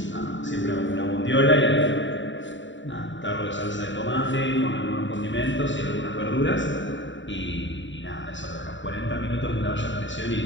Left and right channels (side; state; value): right; late; 0.54 ms